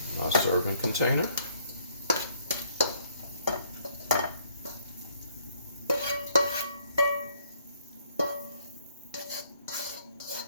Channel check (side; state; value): both; inverted; correlation -0.67